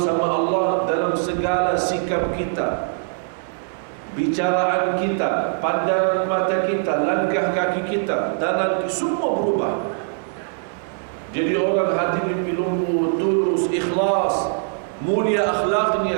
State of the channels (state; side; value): silent; left; digital silence